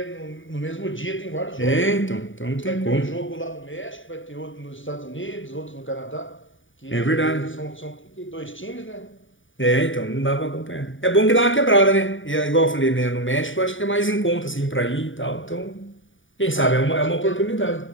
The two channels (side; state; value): right; late; 0.57 ms